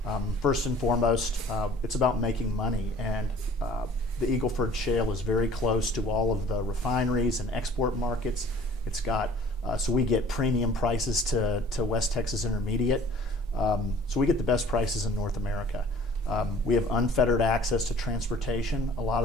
First and foremost, it's about making money, and the Eagle Ford Shale is very close to all of the refineries and export markets. It's got so we get premium prices to West Texas Intermediate. So we get the best prices in North America. We have unfettered access to transportation. A lot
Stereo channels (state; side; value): normal; both; correlation 0.50